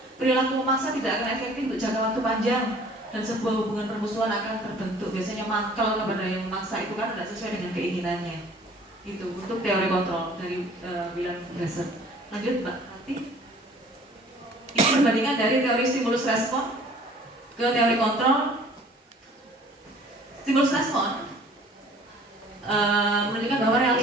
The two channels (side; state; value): both; normal; correlation 0.51